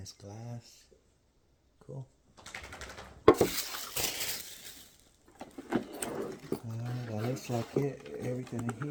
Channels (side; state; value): both; identical; correlation 1.00